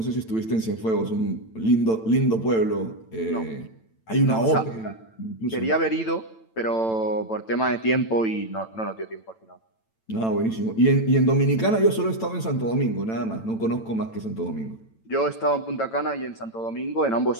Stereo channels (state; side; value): late; right; 9.0 ms